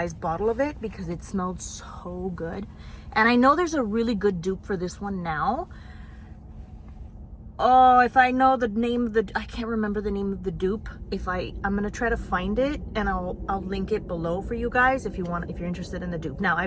bottle of it because it smelled so good. And I know there's a really good dupe for this one now. Oh, if I know the name of the, I can't remember the name of the dupe. I'm gonna try to find it, and I'll link it below for you guys if you're interested in the dupe. Now,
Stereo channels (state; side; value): identical; both; correlation 1.00